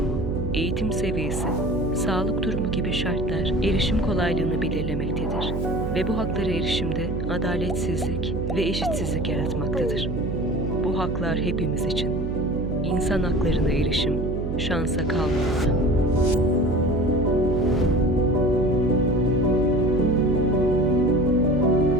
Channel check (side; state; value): right; noise; hum, 4 dB below the sound